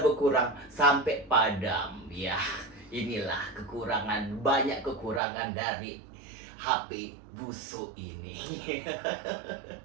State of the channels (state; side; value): drops out; left; at 5.2 s